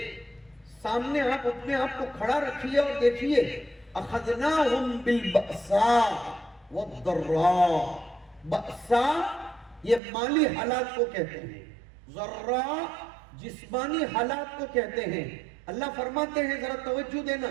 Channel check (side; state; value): left; drops out; at 10.0 s